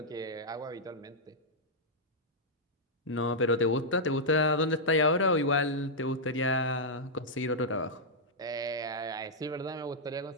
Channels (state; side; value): normal; both; correlation -0.07